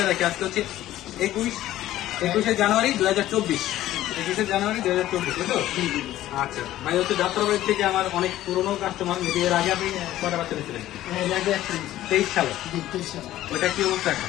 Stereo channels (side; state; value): right; quieter; 14.1 dB